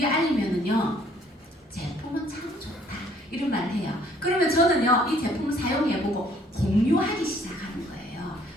알리면은요, 제품은 참 좋다, 이런 말을 해요. 그러면 저는요, 이 제품을 사용해보고 공유하기 시작하는 거예요.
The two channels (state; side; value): normal; both; correlation 0.61